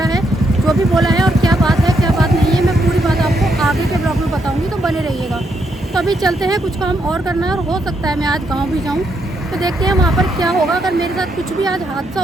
है, जो भी बोला है और क्या बात है क्या बात नहीं है, मैं पूरी बात आपको आगे के ब्लॉग में बताऊंगी, तो बने रहिएगा। तो अभी चलते हैं, कुछ काम और करना है और हो सकता है मैं आज गांव भी जाऊं। तो देखते हैं वहां पर क्या होगा। अगर मेरे साथ कुछ भी आज हादसा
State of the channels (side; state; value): both; normal; correlation 0.77